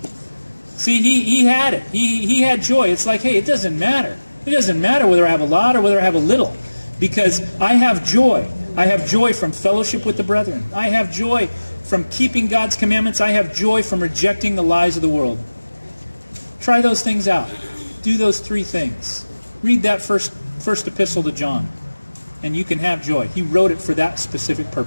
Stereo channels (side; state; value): both; inverted; correlation -1.00